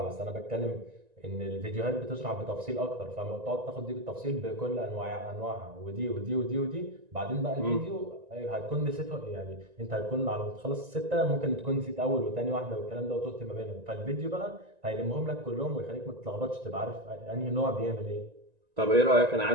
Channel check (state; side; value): late; left; 1.9 ms